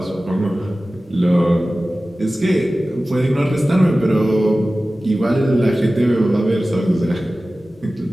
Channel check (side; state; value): both; normal; correlation 0.96